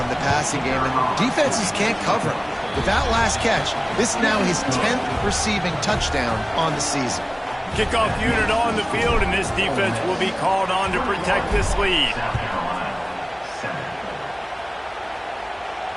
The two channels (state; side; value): identical; both; correlation 1.00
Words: in the passing game, and defenses can't cover him. With that last catch, this is now his 10th receiving touchdown on the season. Kickoff unit on the field, and this defense will be called on to protect this lead.